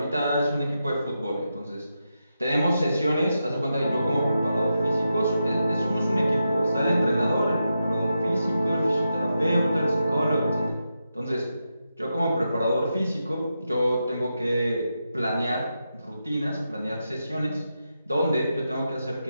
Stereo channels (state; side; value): inverted; both; correlation -0.87